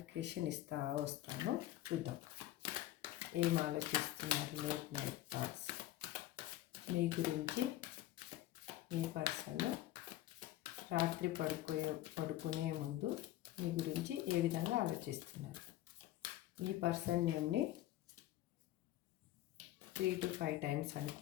ఇస్తా వస్తాను. చూద్దాం ఏం ఆలోచిస్తున్నారు లేట్ నైట్ థాట్స్ మీ గురించి. మీ పర్సన్ రాత్రి పడుకునే ముందు మీ గురించి ఏ విధంగా ఆలోచిస్తున్నారు. మీ పర్సన్ నేమ్ని 3 to 5 టైమ్స్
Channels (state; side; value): quieter; right; 14.6 dB